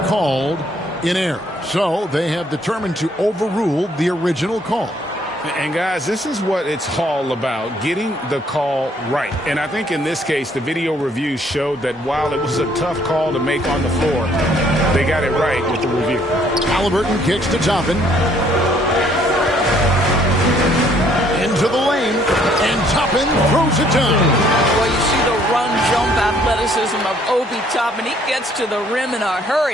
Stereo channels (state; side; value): normal; both; correlation 0.64